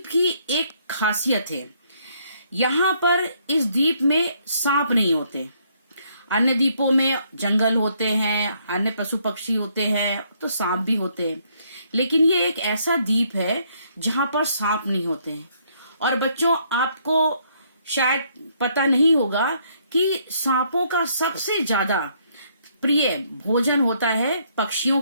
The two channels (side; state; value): both; inverted; correlation -0.69